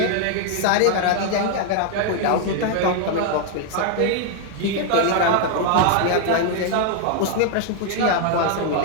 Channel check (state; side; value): different; both; correlation 0.00